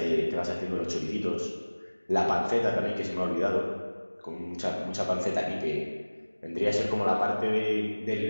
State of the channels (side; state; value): both; inverted; correlation -1.00